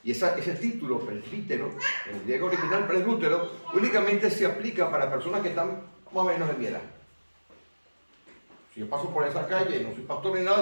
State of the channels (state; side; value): inverted; both; correlation -1.00